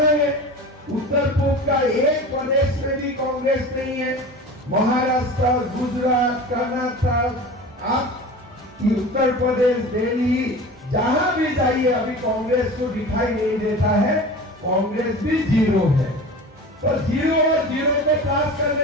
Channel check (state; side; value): normal; both; correlation 0.35